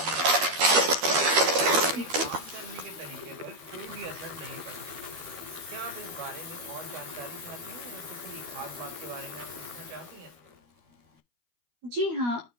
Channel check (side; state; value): left; late; 12 ms